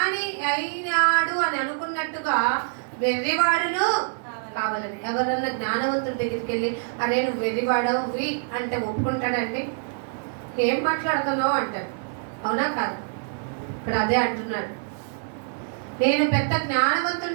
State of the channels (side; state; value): left; silent; digital silence